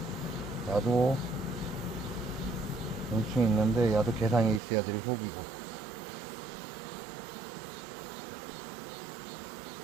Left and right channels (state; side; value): drops out; left; at 4.6 s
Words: 야도 용충 있는데 야도 개상에 있어야 될 소비고,